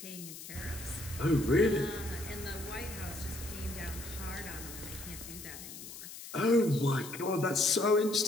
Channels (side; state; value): left; noise; hiss, 12 dB below the sound